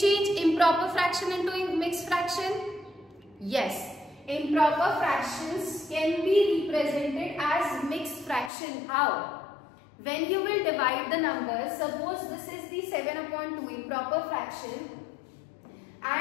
improper fraction into mixed fraction? Yes. Improper fractions can be represented as mixed fraction. How? When you will divide the numbers, suppose this is the 7 upon 2 improper fraction,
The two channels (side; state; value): right; drops out; at 8.5 s